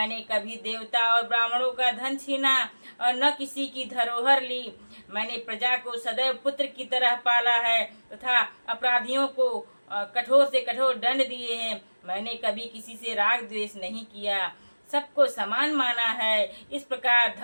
कभी देवता और ब्राह्मणों का धन छीना और न किसी की धरोहर ली। मैंने प्रजा को सदैव पुत्र की तरह पाला है तथा अपराधियों को कठोर से कठोर दंड दिए हैं। मैंने कभी किसी से राग द्वेष नहीं किया, सबको समान माना है। इस प्रकार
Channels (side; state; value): both; inverted; correlation -1.00